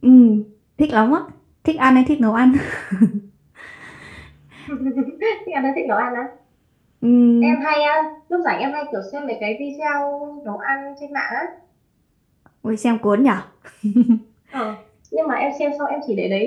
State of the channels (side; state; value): both; identical; correlation 1.00